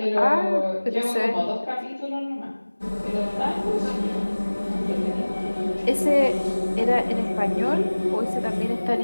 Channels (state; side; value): inverted; both; correlation -1.00